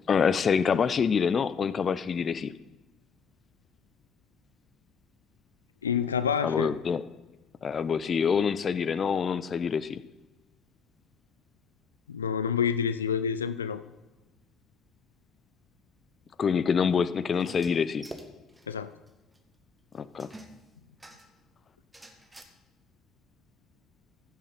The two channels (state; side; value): quieter; right; 6.3 dB